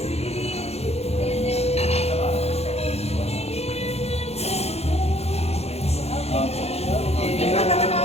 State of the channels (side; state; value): right; late; 0.30 ms